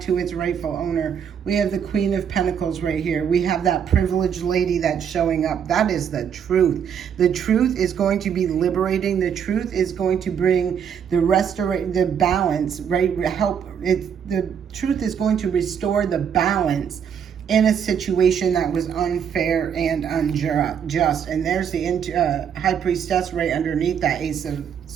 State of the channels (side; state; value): left; quieter; 7.9 dB